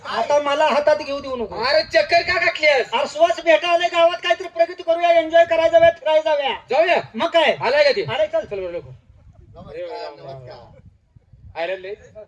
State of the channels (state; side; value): identical; both; correlation 1.00